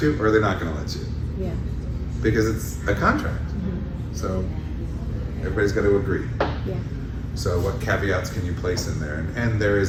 you, or are they not going to let you? Yeah. Because it's a contract. Mm-hmm. So everybody's got to agree. Yeah. So what caveats can you place in there? And there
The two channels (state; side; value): identical; both; correlation 1.00